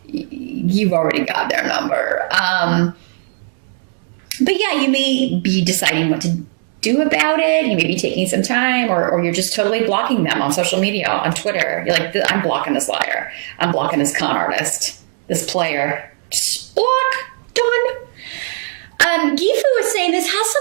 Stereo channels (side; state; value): left; silent; digital silence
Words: you've already got their number. But you may be deciding what to do about it. You may be taking some time, or you're just totally blocking them on social media, on Twitter. You're like, I'm blocking this liar. I'm blocking this con artist. This player. Just block. Done. Gifu is saying this has